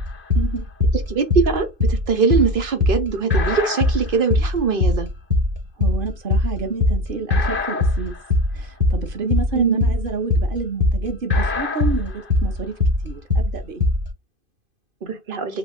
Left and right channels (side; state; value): left; late; 2.5 ms